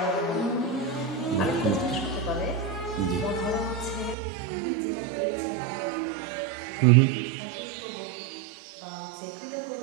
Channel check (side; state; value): left; drops out; at 4.2 s